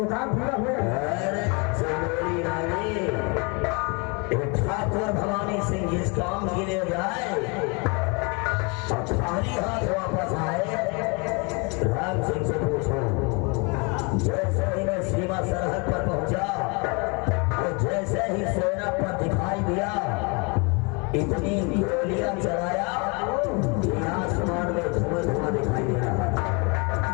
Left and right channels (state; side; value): quieter; right; 31.4 dB